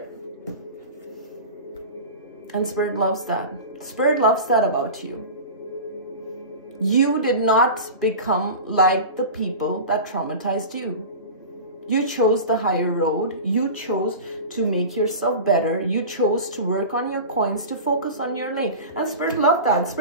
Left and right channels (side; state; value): both; inverted; correlation -0.31